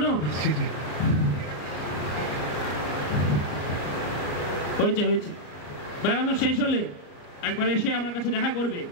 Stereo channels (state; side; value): late; right; 34 ms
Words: হয়েছে হয়েছে, বেড়ানো শেষ হলে একবার এসে আমার কাছে দেখা করবে